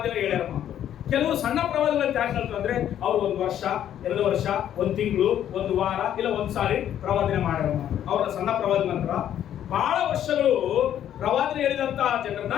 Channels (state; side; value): quieter; right; 10.6 dB